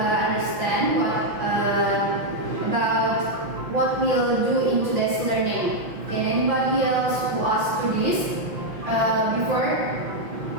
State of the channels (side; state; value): left; late; 5.9 ms